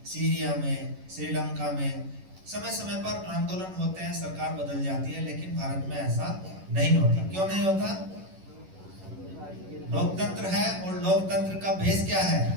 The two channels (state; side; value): late; left; 11 ms